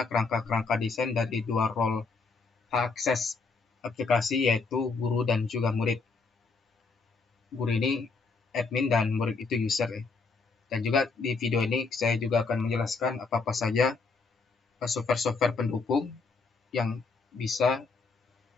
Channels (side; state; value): right; quieter; 4.3 dB